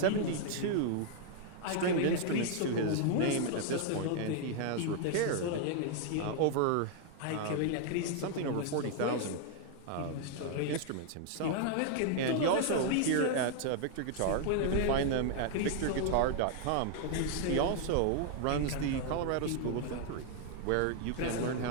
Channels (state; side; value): different; both; correlation 0.00